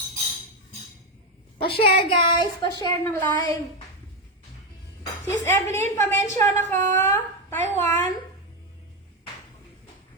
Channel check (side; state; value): both; normal; correlation 0.09